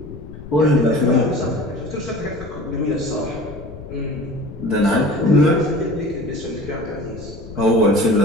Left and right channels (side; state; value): left; noise; rumble, 14 dB below the sound